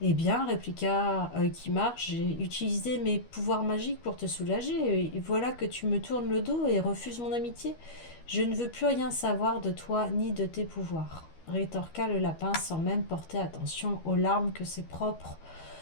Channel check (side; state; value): right; late; 12 ms